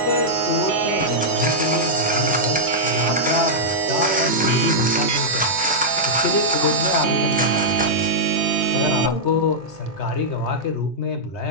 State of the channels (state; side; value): normal; both; correlation -0.08